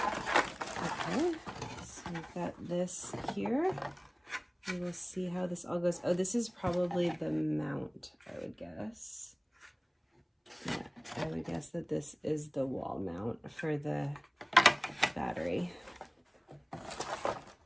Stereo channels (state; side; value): identical; both; correlation 1.00